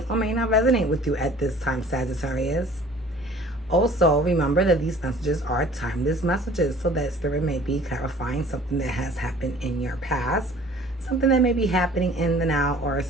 or may not resonate with you at this time, Sagittarius. Also, remember that these messages are timeless messages, so that Spirit may be clarifying something that has happened in your past, something that may be happening in the now, or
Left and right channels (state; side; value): normal; both; correlation 0.49